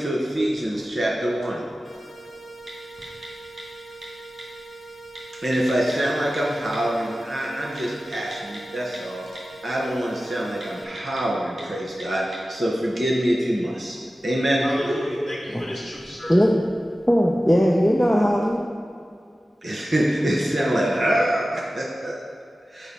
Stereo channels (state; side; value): normal; both; correlation 0.95